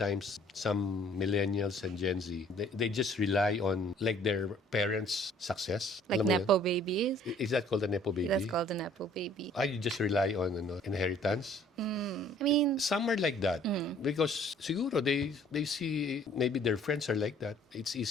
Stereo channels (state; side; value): normal; both; correlation 0.56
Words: some millennials and Gen Z, they just rely on like their parents' success. Like Alam mo Nepo yun? babies. Is that called a Nepo baby? That's called a Nepo baby. You just rely on inheritance? I mean, Some are like that because siguro they see maybe their friends are like that. It's